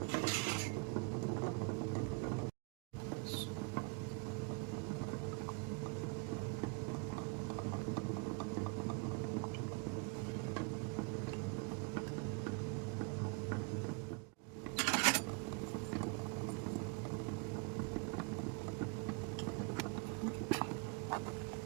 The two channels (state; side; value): quieter; left; 31.1 dB